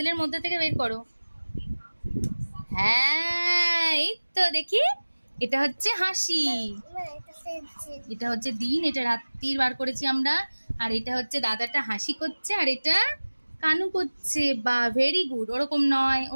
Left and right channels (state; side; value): inverted; both; correlation -1.00